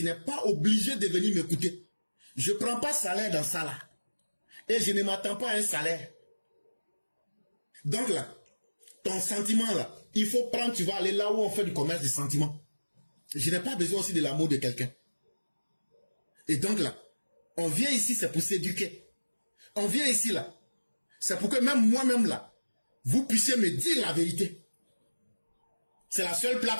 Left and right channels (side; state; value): both; inverted; correlation -1.00